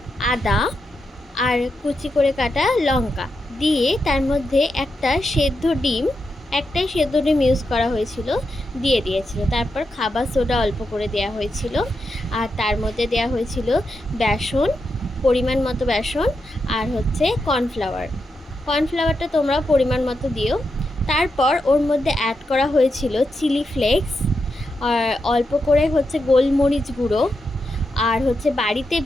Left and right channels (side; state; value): both; normal; correlation 0.86